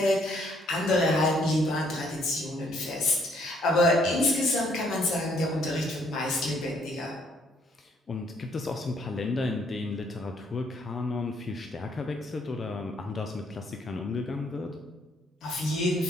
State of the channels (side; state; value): both; normal; correlation 0.67